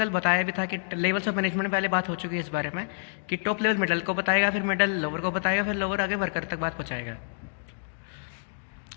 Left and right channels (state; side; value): silent; right; digital silence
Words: बताया भी था कि लेवल्स ऑफ मैनेजमेंट में पहले बात हो चुकी है इस बारे में कि टॉप लेवल मिडल को बताएगा, फिर मिडल लोअर को बताएगा, फिर लोअर आगे वर्कर तक बात पहुँचाएगा।